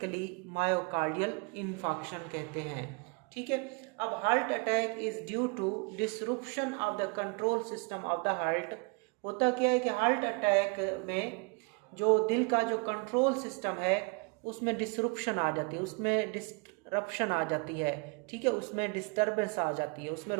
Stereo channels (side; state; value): left; quieter; 31.9 dB